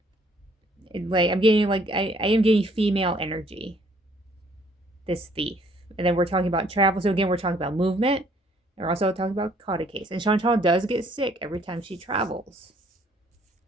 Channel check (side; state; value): both; normal; correlation 0.62